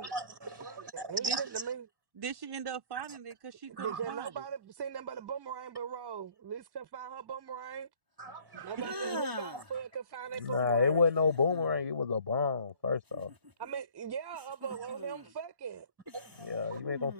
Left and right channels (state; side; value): late; left; 1.1 ms